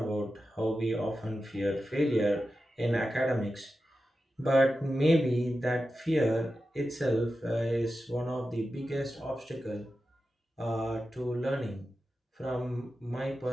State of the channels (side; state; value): both; normal; correlation 0.91